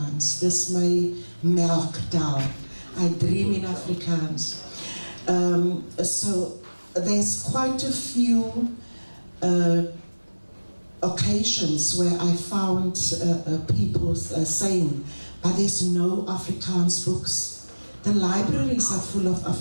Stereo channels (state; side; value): inverted; both; correlation -1.00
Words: Dis my melktaal. I dream in Afrikaans. So there's quite a few occasions where I found people saying, but there's no Afrikaans books. The libraries are full of